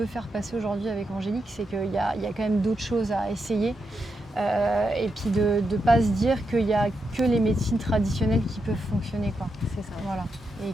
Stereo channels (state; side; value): normal; both; correlation 0.85